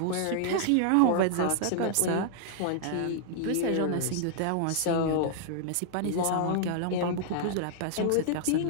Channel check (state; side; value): different; both; correlation -0.01